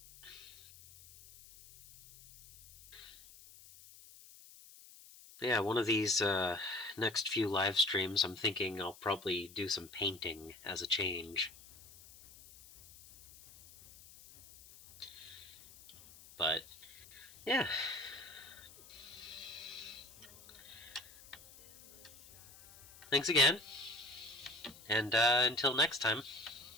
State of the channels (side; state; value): left; noise; hiss, 20 dB below the sound